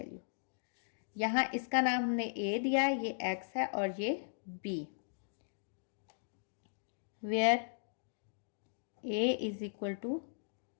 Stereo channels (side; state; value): right; silent; digital silence